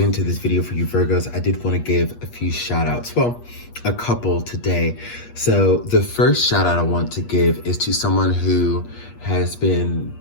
this video for you Virgos, I did want to give a few shout outs. Well, a couple today. So the first shout out I want to give is to someone who has been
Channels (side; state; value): right; late; 8.4 ms